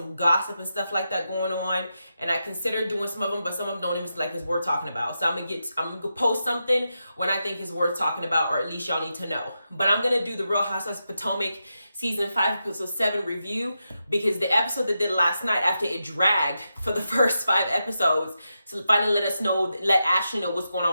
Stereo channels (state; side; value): inverted; both; correlation -0.87